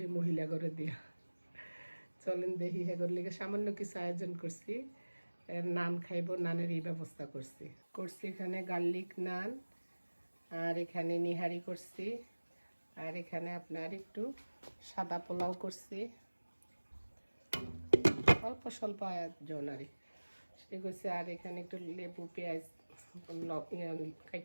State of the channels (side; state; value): both; inverted; correlation -1.00